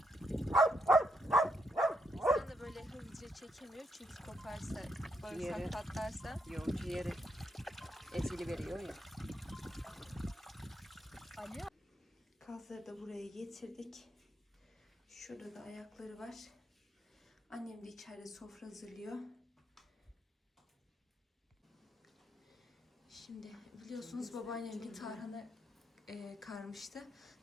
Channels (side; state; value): both; normal; correlation 0.78